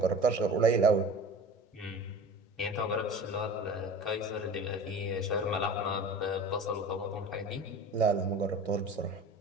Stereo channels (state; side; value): normal; both; correlation 0.37